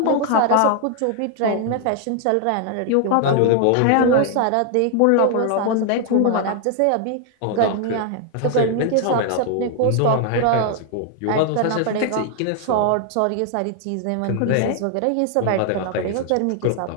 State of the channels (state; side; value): different; both; correlation 0.00